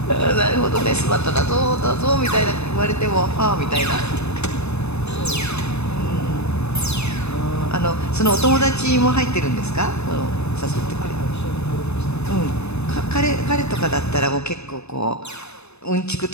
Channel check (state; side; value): late; right; 0.80 ms